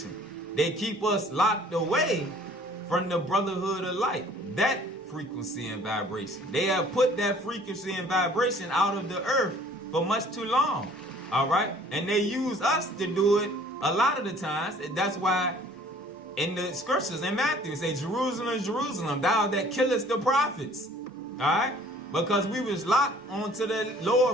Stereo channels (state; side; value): normal; both; correlation 0.54